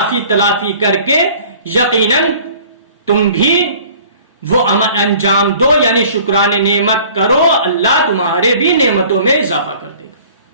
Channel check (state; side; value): inverted; both; correlation -0.50